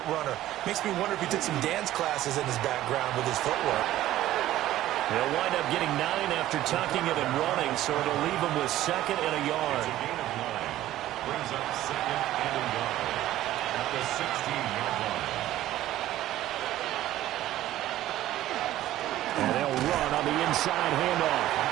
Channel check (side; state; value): left; quieter; 14.2 dB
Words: runner. Makes me wonder if he took some dance classes in his background with his footwork. They'll wind up getting 9 after tucking it and running, so it'll leave them with second and a yard. Brings up second and a yard at the 16-yard line. And they'll run on the inside handoff.